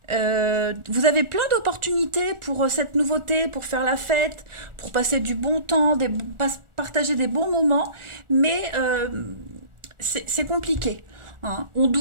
Vous avez plein d'opportunités pour cette nouveauté, pour faire la fête, pour passer du bon temps, partager des bons moments, mais c'est compliqué. Hein. On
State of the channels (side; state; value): left; late; 1.4 ms